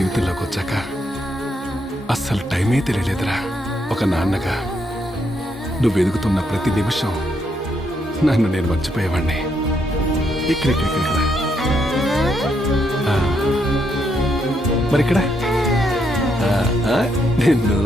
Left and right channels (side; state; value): both; normal; correlation 0.77